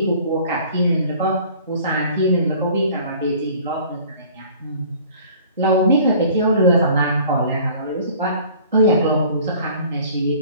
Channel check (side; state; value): both; inverted; correlation -0.50